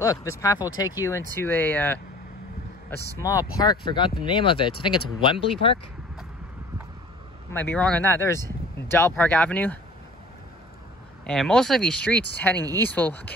this path will take you into a small park. Forgot the name of it. I think it's Wembley Park. I might be wrong on that. There's Dell Park Avenue. And most of these streets heading east will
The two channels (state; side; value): normal; both; correlation 0.48